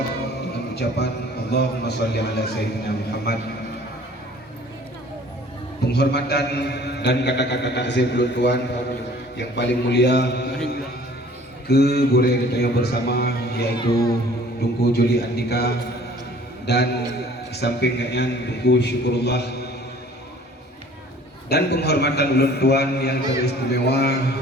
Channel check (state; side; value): normal; both; correlation 0.51